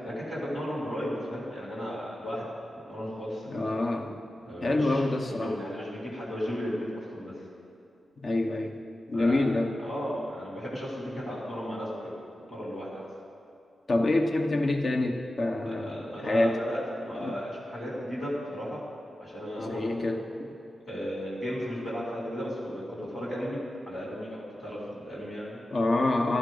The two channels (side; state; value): both; normal; correlation 0.93